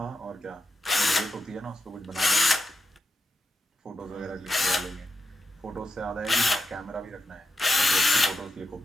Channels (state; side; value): normal; both; correlation 0.86